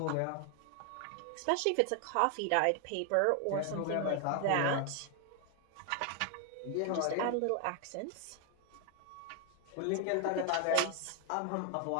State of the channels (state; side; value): different; both; correlation 0.00